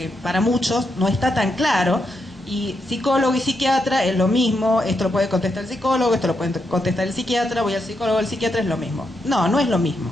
para muchos no está tan claro. Y psicólogo y psiquiatra es lo mismo, esto lo puede contestar el psicólogo, esto lo puede contestar el psiquiatra, voy al psicólogo, el psiquiatra, es lo mismo. No, no es lo mismo.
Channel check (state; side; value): normal; both; correlation 0.82